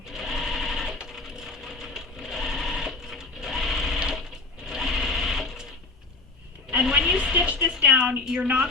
And when you stitch this down, you're not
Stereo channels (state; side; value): quieter; right; 3.4 dB